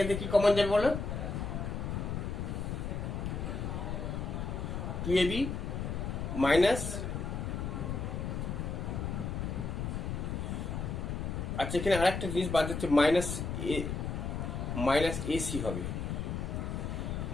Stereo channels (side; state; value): left; noise; rumble, 3 dB below the sound